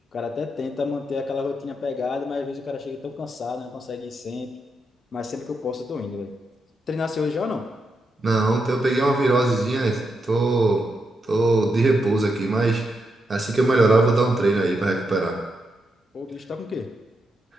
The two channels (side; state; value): both; normal; correlation 0.83